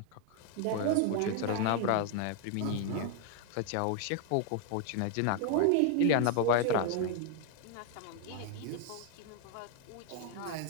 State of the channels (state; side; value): different; both; correlation 0.00